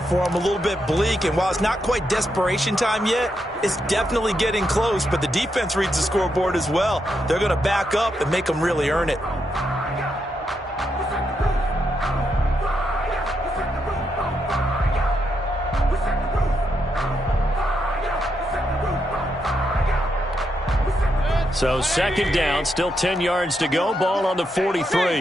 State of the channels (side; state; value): both; normal; correlation 0.82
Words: for him, a little bit bleak. And while it's not quite desperation time yet, it's definitely getting close. But the defense reads the scoreboard as well. They're going to back up and make them really earn it. So 2nd down, still 10 yards to go. Ball on the